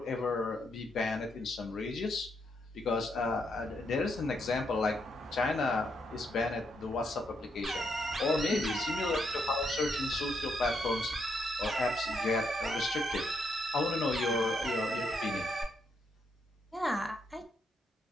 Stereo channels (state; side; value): normal; both; correlation 0.77